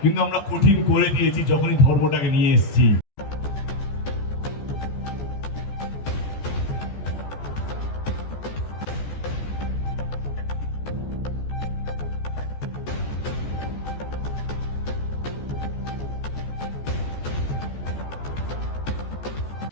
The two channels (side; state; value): right; late; 14 ms